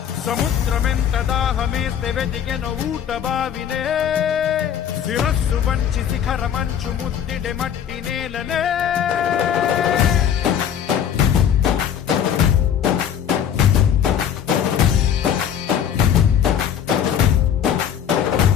సముద్రమెంత దాహమేస్తే వెతికెన ఊట బావినే శిరస్సు వంచి శిఖర మంచు ముద్దిడే మట్టి నేలనే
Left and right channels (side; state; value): right; quieter; 8.9 dB